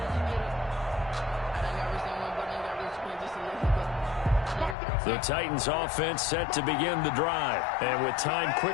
The Titans offense set to begin the drive. And with time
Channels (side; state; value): right; drops out; at 4.8 s